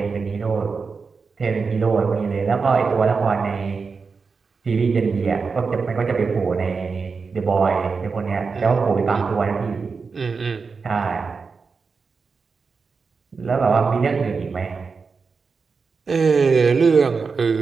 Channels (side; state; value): left; quieter; 4.9 dB